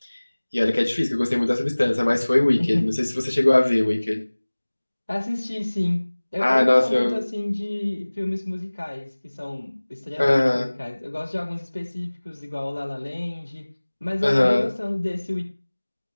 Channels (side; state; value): both; inverted; correlation -1.00